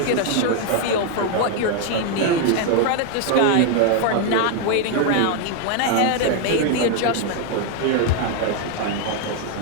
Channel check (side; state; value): both; different; correlation 0.01